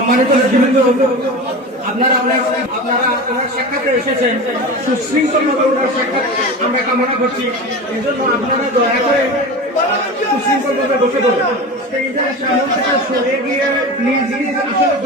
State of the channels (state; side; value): normal; both; correlation 0.29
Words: নেতৃবৃন্দ, আপনারা ওনার সাক্ষাৎে এসেছেন, সুশৃঙ্খলভাবে ওনার সাক্ষাৎ আমরা কামনা করছি। এই জন্য আপনারা দয়া করে সুশৃঙ্খলভাবে বসে পড়ুন, স্টেজের সামনে থেকে সরে গিয়ে নিজ নিজ আসলে